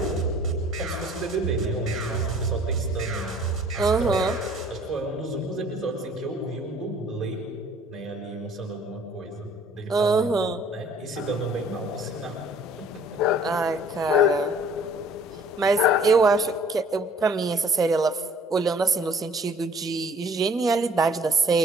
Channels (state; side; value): normal; both; correlation 0.55